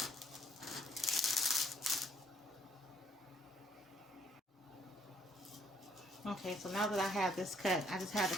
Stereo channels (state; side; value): normal; both; correlation 0.65